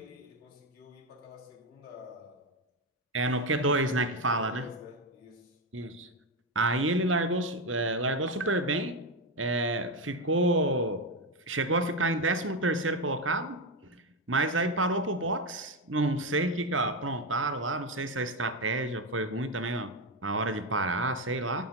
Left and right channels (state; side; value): normal; both; correlation 0.10